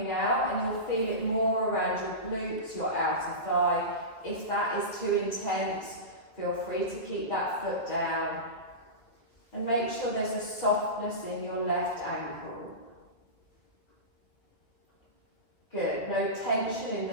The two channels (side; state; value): right; late; 2.0 ms